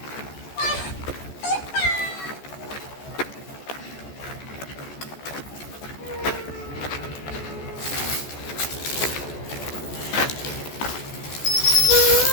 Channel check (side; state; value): right; late; 14 ms